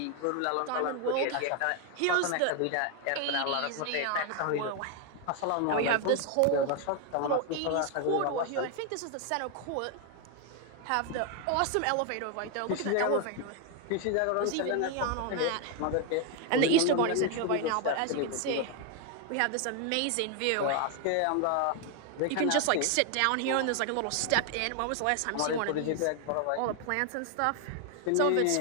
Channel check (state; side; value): different; both; correlation 0.01